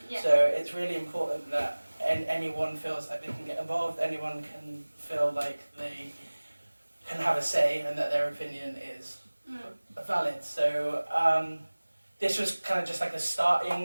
So it's really important that anyone feels like they can get involved, anyone can feel like they can have a say and that their opinion is valid. So this was kind of just like a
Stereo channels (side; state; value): both; inverted; correlation -1.00